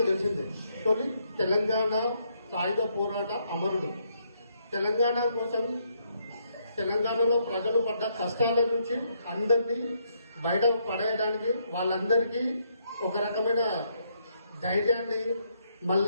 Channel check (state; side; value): inverted; both; correlation -0.74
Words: తెలిసిందే. తొలి తెలంగాణ సాయుధ పోరాట అమరుడు. తెలంగాణ కోసం తెలంగాణలో ప్రజలు పడ్డ కష్టాల నుంచి అందరినీ బయట పడేయడానికి వాళ్ళందరికీ ఒక రకమైన ధైర్యాన్ని